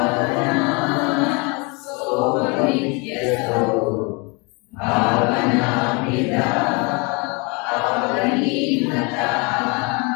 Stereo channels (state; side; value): quieter; right; 29.7 dB